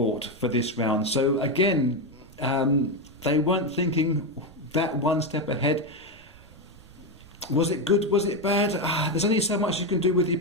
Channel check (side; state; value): right; noise; rumble, 23 dB below the sound